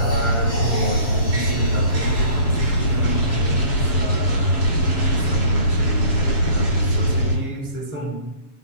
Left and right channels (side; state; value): right; late; 7.2 ms